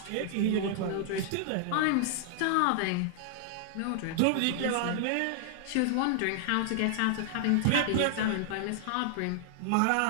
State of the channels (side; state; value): both; different; correlation -0.01